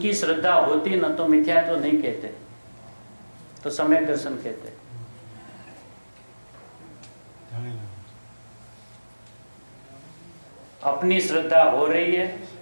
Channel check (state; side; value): inverted; both; correlation -1.00